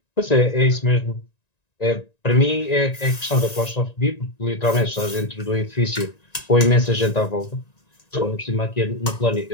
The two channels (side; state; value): right; late; 1.9 ms